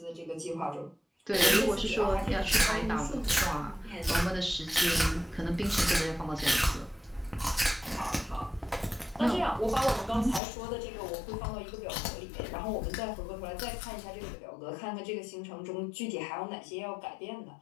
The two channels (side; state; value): right; drops out; at 10.4 s